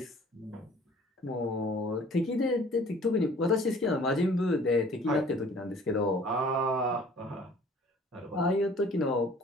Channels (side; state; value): both; normal; correlation 0.52